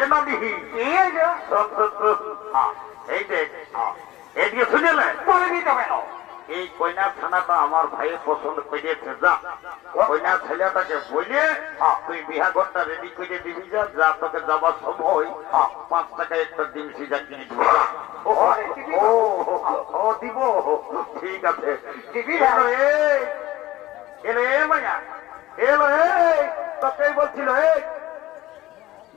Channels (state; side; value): quieter; right; 16.6 dB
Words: এই দেখ এইদিকে শুনেলে এই কন্যা থানাটা আমার ভাইয়ের পছন্দ করিয়েছে যা কন্যা ছেলেটাকে বলে তুই বিহাঘরটা রেডি করে দিবি যা যা তোকে যাবার সময় 5 টাকা একটা ডিম সিজা কিনে দিব ও দিব ঠিক আছে এলো মায়া এলো তোকেই বলছিল